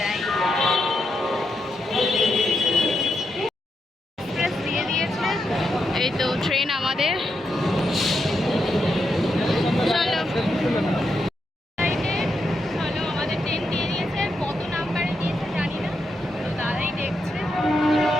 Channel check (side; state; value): both; normal; correlation 0.83